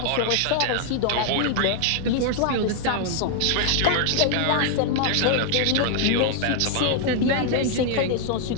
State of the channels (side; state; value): both; different; correlation 0.00